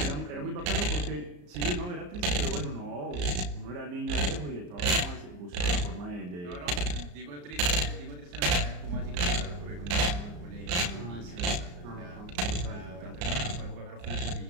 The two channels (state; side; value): late; left; 34 ms